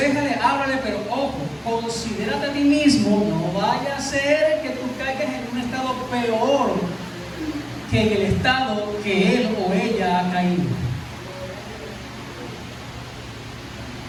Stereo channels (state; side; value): identical; both; correlation 1.00